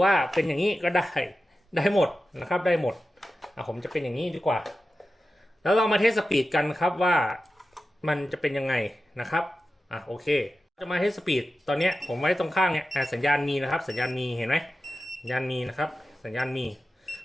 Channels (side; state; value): both; normal; correlation 0.93